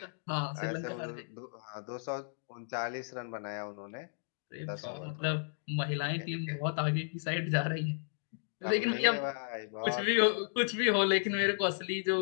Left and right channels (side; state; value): right; silent; digital silence